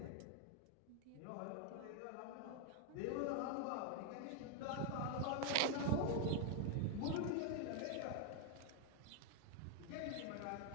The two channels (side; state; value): both; different; correlation 0.01